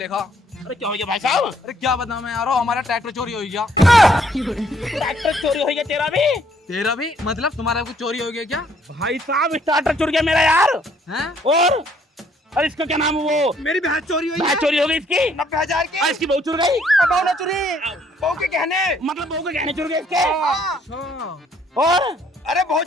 अरे क्या हो गया भाई साहब? अरे क्या बताऊं मैं यार, हमारा ट्रैक्टर चोरी हो गया। ट्रैक्टर चोरी हो गया तेरा भी? तेरा भी मतलब तुम्हारा कुछ चोरी हो गया क्या? भाई साहब ट्रैक्टर चोरी गया मेरा यार। हैं? और अरे इसका क्या नाम है वो? मेरी भैंस चोरी हुई है। भैंस चोरी हो गई इसकी 90,000 की। इसकी बहू चुर गई। बहू ना चोरी, बहू के गहने। मतलब बहू के गहने चुर गए इसके। हाँ। और अरे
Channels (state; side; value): normal; both; correlation 0.65